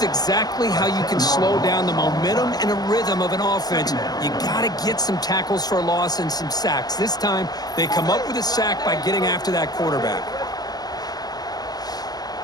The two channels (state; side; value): late; right; 0.19 ms